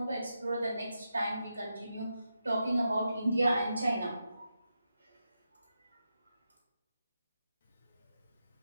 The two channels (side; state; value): both; inverted; correlation -0.87